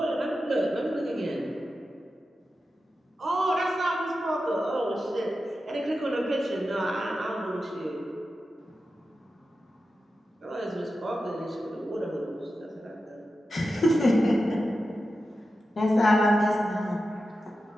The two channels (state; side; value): normal; both; correlation 0.91